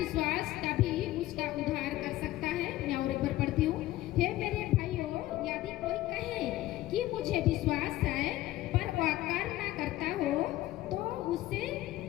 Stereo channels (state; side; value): quieter; right; 15.8 dB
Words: कभी उसका उद्धार कर सकता है? मैं और एक बार पढ़ती हूँ। हे मेरे भाइयों, यदि कोई कहे कि मुझे विश्वास है पर वह कर्म ना करता हो तो उससे